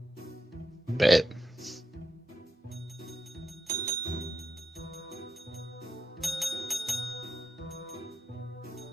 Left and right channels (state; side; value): normal; both; correlation 0.86